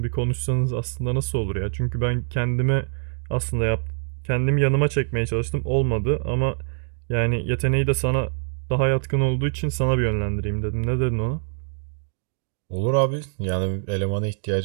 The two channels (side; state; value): left; silent; digital silence